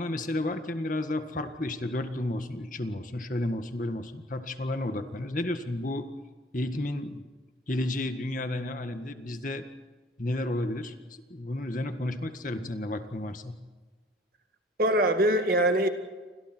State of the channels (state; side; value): normal; both; correlation 0.52